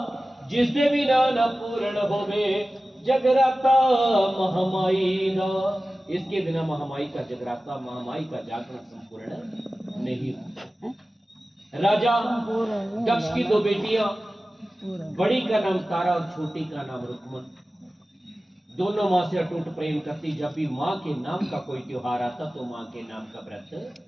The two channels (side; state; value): both; normal; correlation 0.96